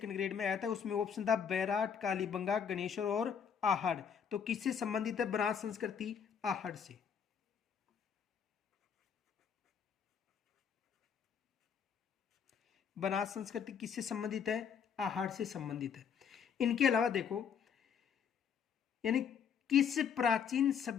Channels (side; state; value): right; quieter; 7.3 dB